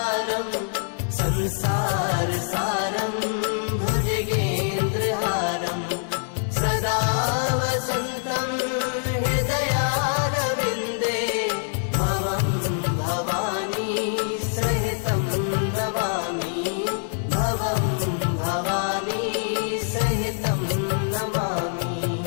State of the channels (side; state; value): right; silent; digital silence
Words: संसारसारं भुजगेन्द्रहारं सदा वसन्तं हृदयारविन्दे भवं भवानी सहितं नमामि भवं भवानी सहितं नमामि।